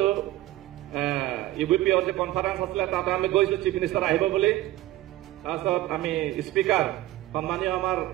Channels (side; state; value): left; quieter; 15.5 dB